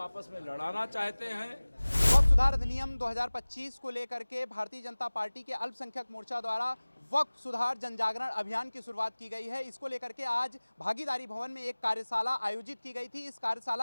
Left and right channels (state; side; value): inverted; both; correlation -1.00